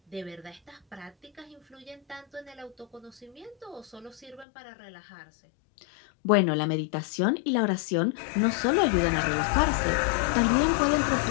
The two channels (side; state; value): right; drops out; at 4.5 s